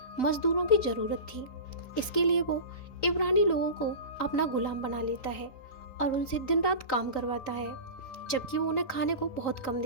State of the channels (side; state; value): right; late; 3.9 ms